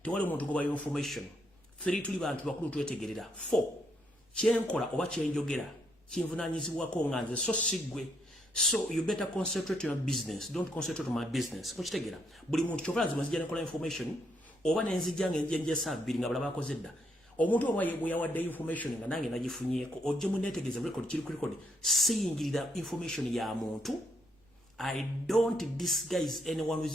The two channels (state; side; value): normal; both; correlation 0.75